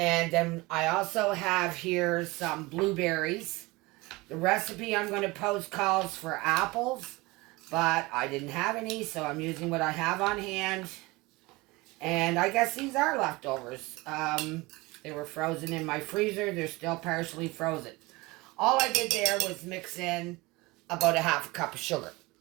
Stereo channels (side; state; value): left; quieter; 22.7 dB